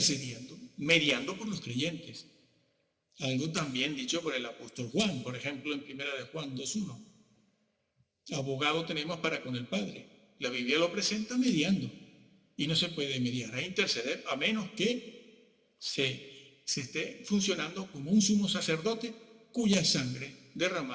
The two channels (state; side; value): identical; both; correlation 1.00